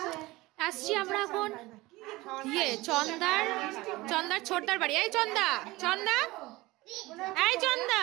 আসছি আমরা এখন চন্দার ছোটদার বাড়ি। এই চন্দা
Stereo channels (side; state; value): left; quieter; 20.2 dB